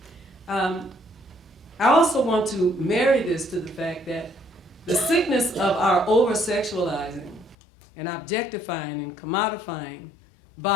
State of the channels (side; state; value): right; drops out; at 7.6 s